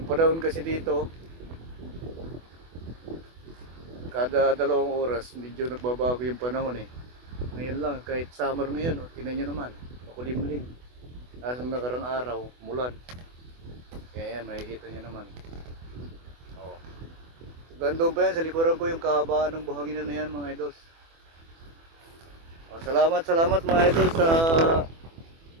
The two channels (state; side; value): late; left; 24 ms